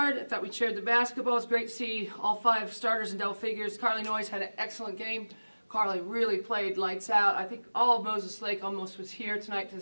I thought we shared the basketball. It was great to see all 5 starters in double figures. Carly Noyes had an excellent game. Carly really played lights out. I think all of Moses Lake almost was here tonight to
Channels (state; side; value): inverted; both; correlation -1.00